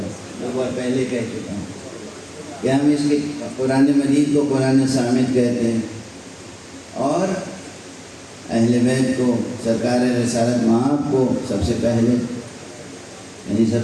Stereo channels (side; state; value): both; identical; correlation 1.00